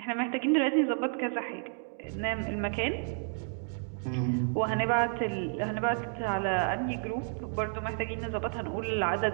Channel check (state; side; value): silent; left; 57 dB below the other